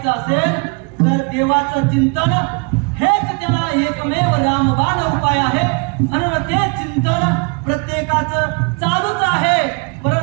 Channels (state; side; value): quieter; left; 33.5 dB